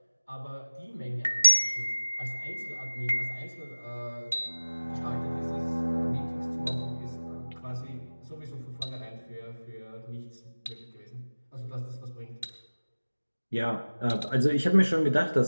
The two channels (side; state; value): both; inverted; correlation -1.00